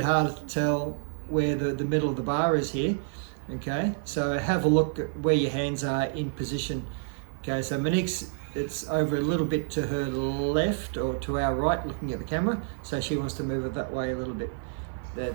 harder to tell where the middle of the bar is here. Okay, so have a look at where your hands are in position. Okay, so Monique's, it's over a little bit to her left or to our right looking at the camera, so she wants to move it that way a little bit.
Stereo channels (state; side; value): silent; left; 59 dB below the other